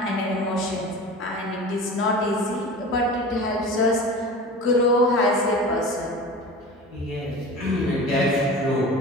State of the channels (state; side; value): normal; both; correlation 0.35